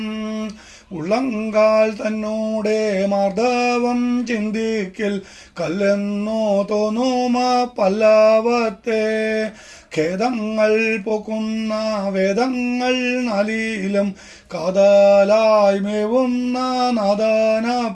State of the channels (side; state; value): both; identical; correlation 1.00